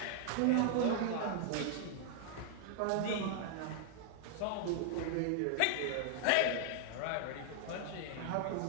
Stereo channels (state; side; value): different; both; correlation 0.00